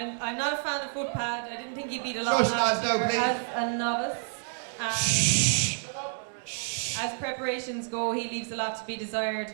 not a fan of Footpad. I didn't think he beat a lot Shush, last lads, year now, please. as a novice. Shh. As preparations go, he leaves a lot to be desired.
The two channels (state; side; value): silent; left; 59 dB below the other